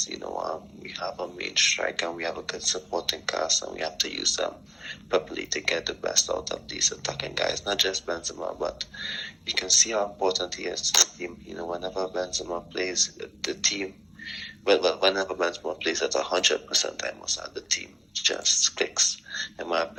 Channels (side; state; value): both; normal; correlation 0.97